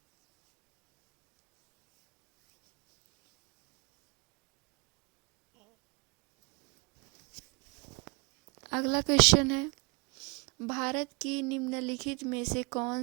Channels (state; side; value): quieter; left; 31.7 dB